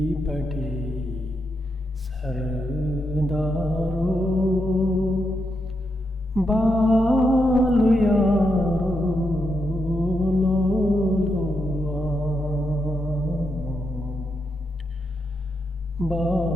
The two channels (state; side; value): normal; both; correlation 0.83